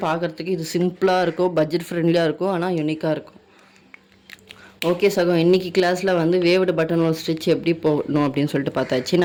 பார்க்குறதுக்கு இது சிம்பிளாக இருக்கும், பட்ஜெட் ஃப்ரெண்ட்லியாக இருக்கும், ஆனால் யூனிக்காக இருக்கும். ஓகே சகோ, இன்றைக்கி கிளாஸில் வந்து வேவ்டு பட்டன் ஹோல் ஸ்டிச் எப்படி போடணும் அப்படின்னு சொல்லிட்டு பார்த்தாச்சு.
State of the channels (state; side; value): identical; both; correlation 1.00